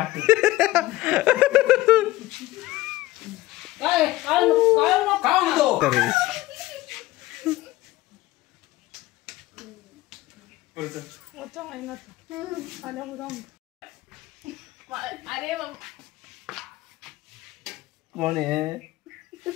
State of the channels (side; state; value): right; quieter; 17.2 dB